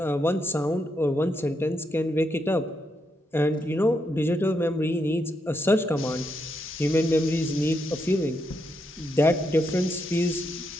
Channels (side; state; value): both; normal; correlation 0.81